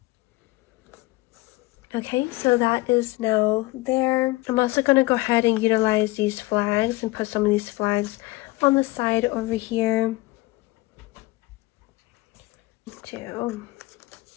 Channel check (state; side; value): quieter; right; 21.1 dB